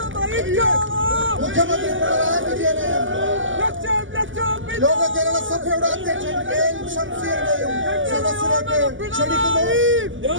മുഖ്യമന്ത്രി പിണറായി വിജയനെയും ലോക കേരള സഭയുടെ അധ്യക്ഷൻ കെ.എൻ. ഷംസീറിനെയും സദസ്സിലേക്ക് ക്ഷണിക്കുന്നു.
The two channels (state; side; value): late; left; 0.57 ms